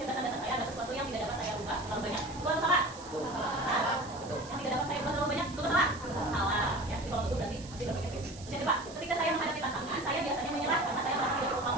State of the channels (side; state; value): right; noise; hiss, 17 dB below the sound